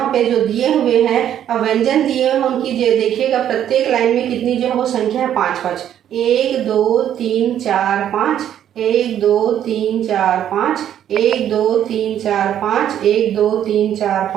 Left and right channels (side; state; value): left; quieter; 10.4 dB